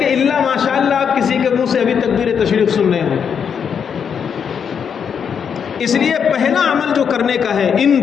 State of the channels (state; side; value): quieter; right; 7.2 dB